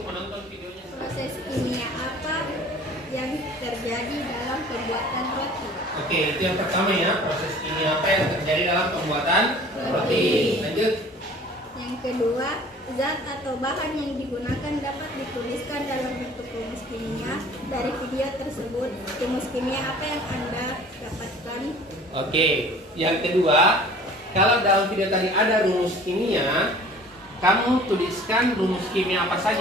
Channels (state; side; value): normal; both; correlation 0.48